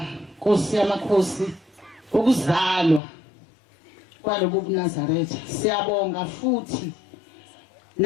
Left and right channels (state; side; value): drops out; right; at 3.0 s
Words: Nkosi yamakhosi ukuzalwa kwalobu eNazaretha. Siyabonga futhi